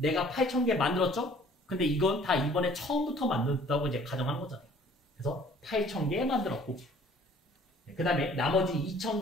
8,000개 만들었죠? 근데 이건 다 이번에 처음부터 만들었다고 이제 가정하는 거잖아요. 그래서 8,000개 만들었고 그 다음에 나머지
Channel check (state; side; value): normal; both; correlation 0.55